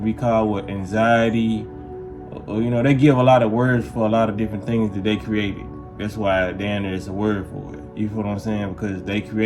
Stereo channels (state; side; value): identical; both; correlation 1.00